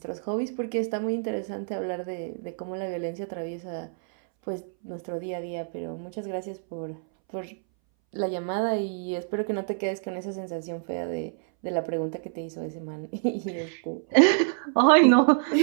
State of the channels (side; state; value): left; silent; 60 dB below the other